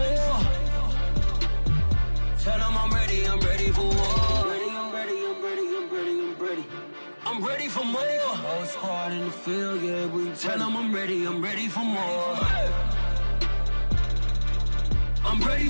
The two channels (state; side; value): inverted; both; correlation -1.00